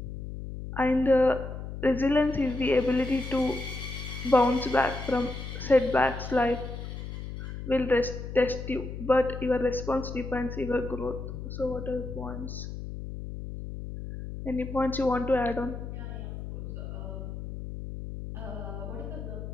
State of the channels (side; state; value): left; noise; hum, 8 dB below the sound